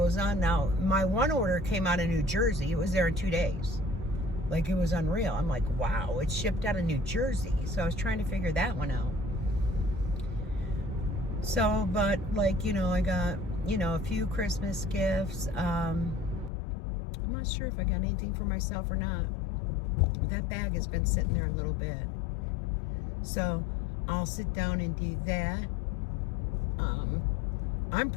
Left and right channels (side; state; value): right; drops out; at 16.5 s